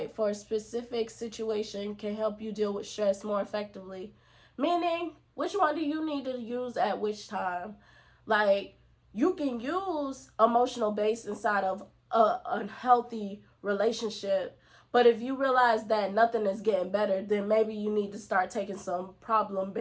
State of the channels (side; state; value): both; identical; correlation 1.00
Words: for a specific situation can help you deal with stress more effectively. Meaning, which one do you need to use at which time? You can use emotional base inside of a unhealthy relationship, but if you realize that nothing is getting better, then maybe you need to start taking some